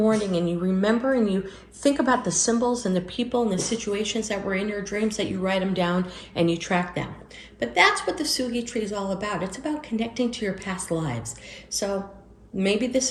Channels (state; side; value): identical; both; correlation 1.00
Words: and you remember and you think about the symbols and the people and the situations that were in your dreams, that you write them down and you track them. But that's what the Sugi tree is all about. It's about connecting to your past lives. So maybe this